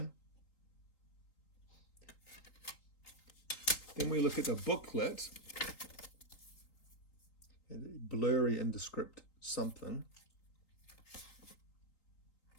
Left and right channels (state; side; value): late; right; 3.8 ms